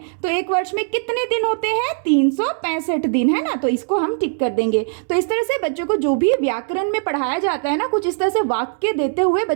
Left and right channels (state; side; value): silent; left; 66 dB below the other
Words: तो एक वर्ष में कितने दिन होते हैं? 365 दिन, है ना, तो इसको हम टिक कर देंगे। तो इस तरह से बच्चों को जो भी व्याकरण में पढ़ाया जाता है ना, कुछ इस तरह से वाक्य देते हुए